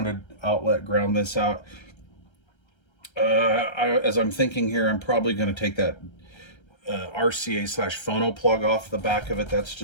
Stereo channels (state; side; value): late; right; 1.3 ms